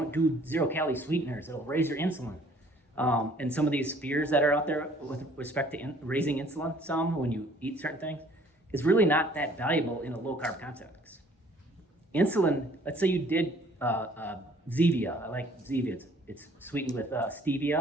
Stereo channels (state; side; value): normal; both; correlation 0.57